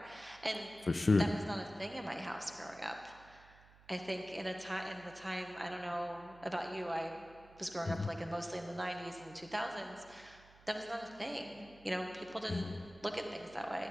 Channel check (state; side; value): noise; right; hum, 23 dB below the sound